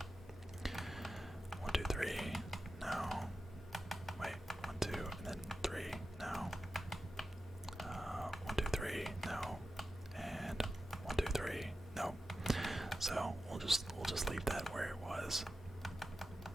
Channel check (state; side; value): normal; both; correlation 0.92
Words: 1, 2, 3, no. Wait, 1, 2, and then 3, no. we'll just leave that where it was,